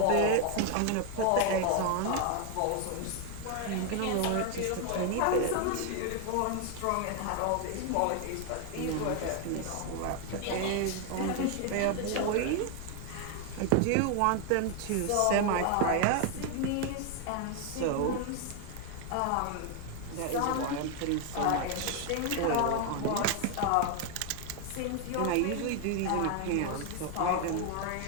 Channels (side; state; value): both; different; correlation 0.01